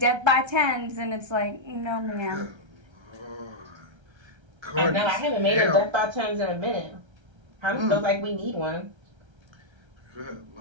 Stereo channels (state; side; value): late; left; 1.3 ms